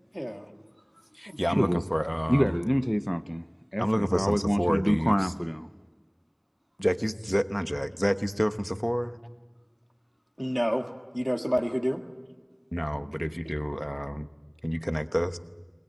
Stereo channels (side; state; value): both; identical; correlation 1.00